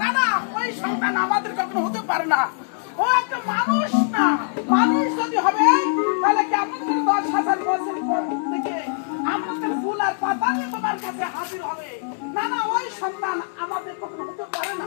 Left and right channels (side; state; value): right; silent; digital silence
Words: না, ওই সন্তান আমাদের কখনো হতে পারে না। ও একটা মানুষ না। মানুষ যদি হবে তাহলে কেমন করে 10,000 বছর পর থেকে আমাদের ফুল আর পাতা নিয়ে তোমার কাছে হাজির হবে? না না, ওই সন্তান আমাদের কখনো হতে পারে না।